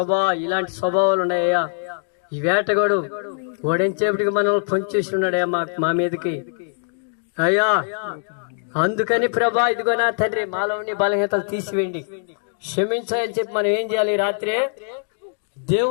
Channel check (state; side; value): silent; right; digital silence